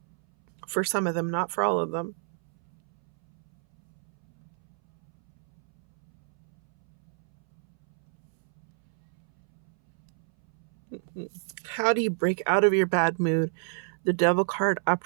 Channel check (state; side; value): silent; left; 60 dB below the other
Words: For some of them, not for all of them. How do you break out of your bad mood? The Devil card